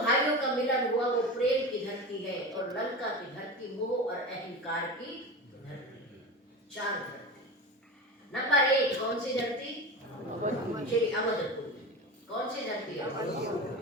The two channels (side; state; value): both; normal; correlation 0.27